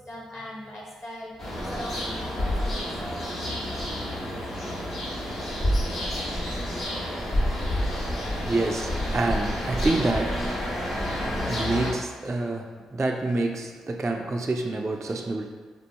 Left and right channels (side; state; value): both; normal; correlation 0.87